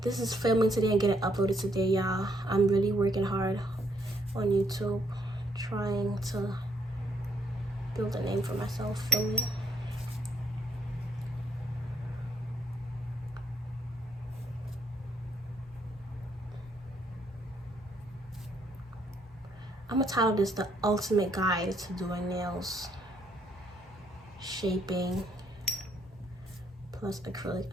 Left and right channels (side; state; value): both; normal; correlation 0.70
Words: This is filming today and getting uploaded today, y'all. I'm really working hard on YouTube, trying to build a name for myself. Filming. I'm gonna title this The Ultimate Guide to Doing Nails, Shaping, plus Acrylic